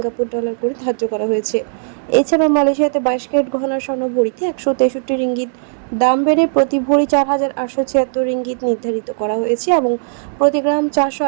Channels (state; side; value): silent; left; digital silence